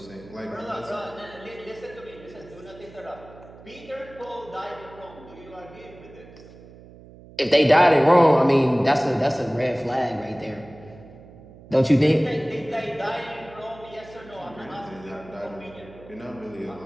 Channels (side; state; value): right; noise; hum, 20 dB below the sound